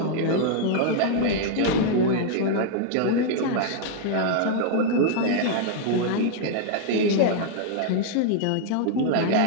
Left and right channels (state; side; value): different; both; correlation -0.01